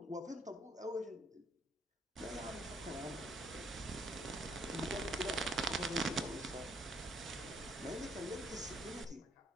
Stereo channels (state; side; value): normal; both; correlation 0.68